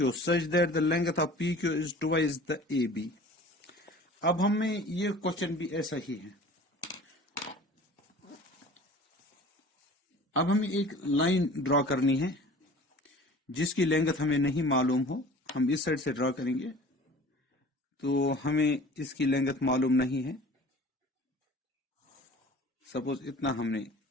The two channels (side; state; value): both; normal; correlation 0.44